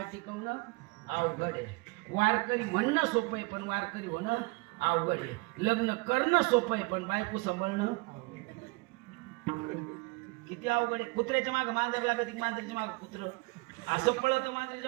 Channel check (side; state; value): left; quieter; 26.7 dB